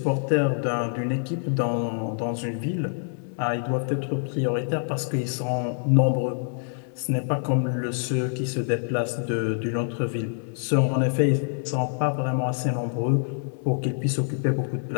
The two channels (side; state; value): right; silent; digital silence